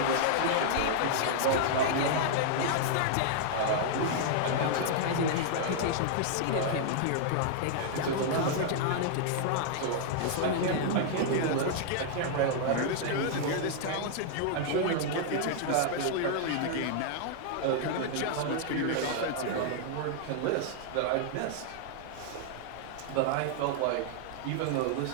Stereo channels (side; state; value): both; different; correlation -0.01